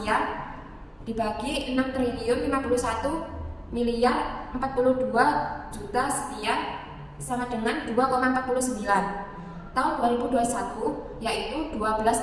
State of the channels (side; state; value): both; identical; correlation 1.00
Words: dibagi 6 triliun 51 miliar 42 juta sekian sama dengan 2,49. Tahun 2021 yaitu